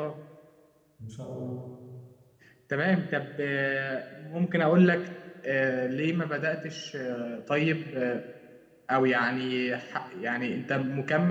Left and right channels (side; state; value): both; identical; correlation 1.00